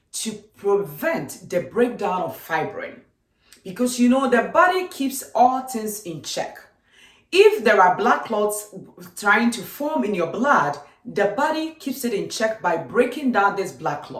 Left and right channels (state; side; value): identical; both; correlation 1.00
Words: to prevent the breakdown of fibrin. Because the body keeps all things in check. If there are blood clots trying to form in your blood, the body keeps it in check by breaking down this blood